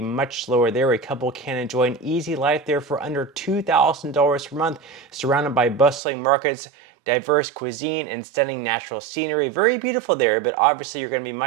much lower there. A couple can enjoy an easy life there for under $2,000 per month, surrounded by bustling markets, diverse cuisine, and stunning natural scenery. Very beautiful there, but obviously you're going to be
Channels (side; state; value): left; drops out; at 6.0 s